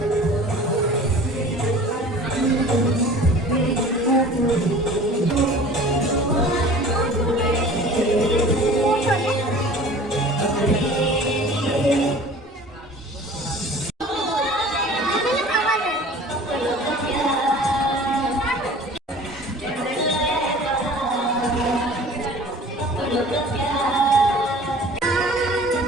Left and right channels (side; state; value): both; normal; correlation 0.45